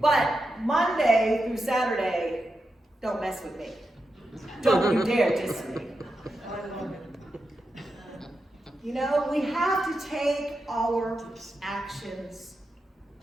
but Monday through Saturday, don't mess with me. Don't you dare diss me. You know, we have to take our actions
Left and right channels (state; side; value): normal; both; correlation 0.88